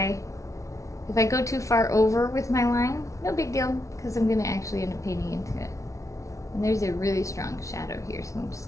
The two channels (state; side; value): late; right; 0.15 ms